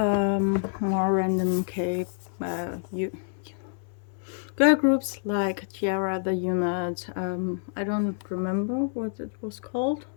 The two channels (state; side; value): silent; right; 60 dB below the other